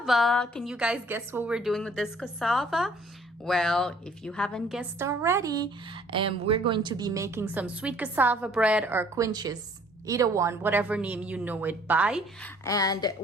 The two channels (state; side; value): normal; both; correlation 0.58